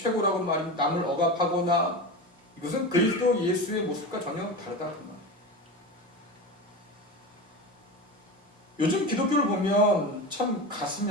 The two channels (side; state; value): both; normal; correlation 0.25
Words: 말이 남을 억압하거나 이것은 그리스도 예수의 모습과 전혀 다르다 그 말. 요즘 기독교를 보면 참 가슴이